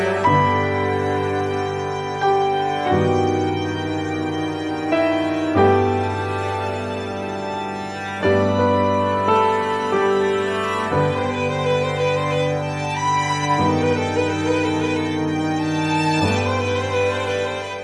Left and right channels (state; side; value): identical; both; correlation 1.00